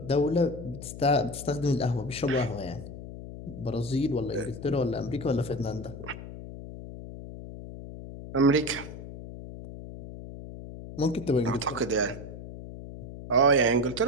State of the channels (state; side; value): noise; left; hum, 12 dB below the sound